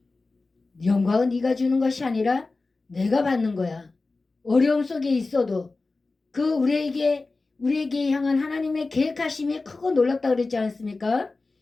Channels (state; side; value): quieter; right; 3.6 dB